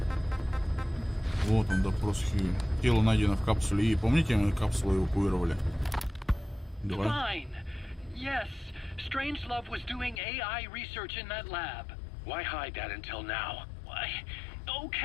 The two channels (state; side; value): drops out; right; at 10.2 s